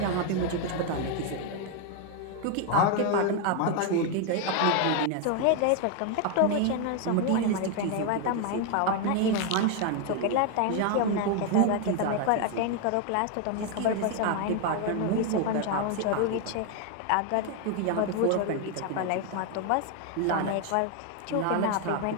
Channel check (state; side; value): different; both; correlation 0.01